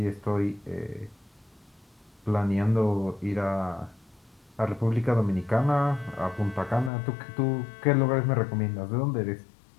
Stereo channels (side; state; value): right; drops out; at 6.9 s